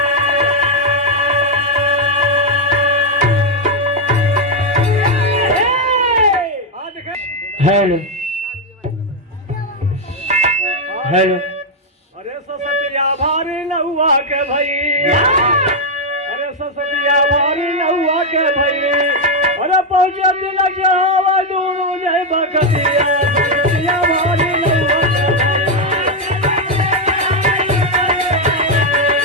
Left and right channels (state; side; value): normal; both; correlation 0.02